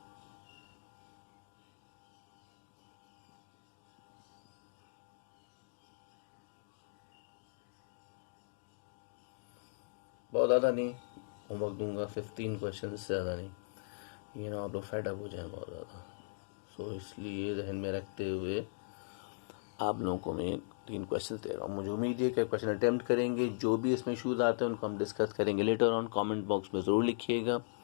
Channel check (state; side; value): silent; right; digital silence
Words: बहुत ज़्यादा नहीं होमवर्क दूंगा, 15 क्वेश्चन से ज़्यादा नहीं, ये ना आप लोग फेड अप हो जाए बहुत ज़्यादा। सो इसलिए जहन में रखते हुए आप लोगों को मैं 3 क्वेश्चन दे रहा हूँ। मुझे उम्मीद है कि क्वेश्चन अटेम्प्ट करेंगे। जो भी इसमें इशूज़ आते हैं उनको हम डिस्कस करेंगे लेटर ऑन। कमेंट बॉक्स में ज़रूर लिखिएगा,